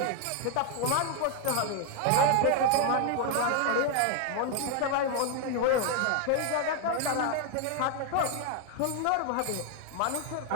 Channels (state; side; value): different; both; correlation 0.01